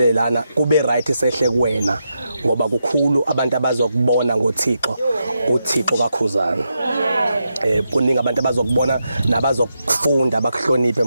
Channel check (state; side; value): inverted; both; correlation -0.85